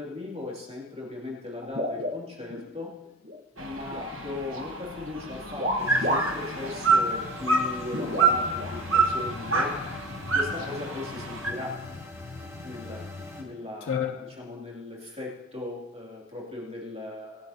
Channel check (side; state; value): both; normal; correlation 0.33